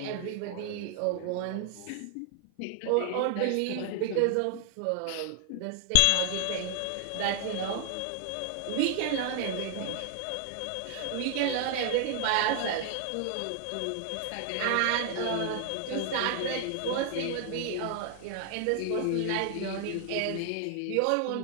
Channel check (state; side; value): different; both; correlation 0.00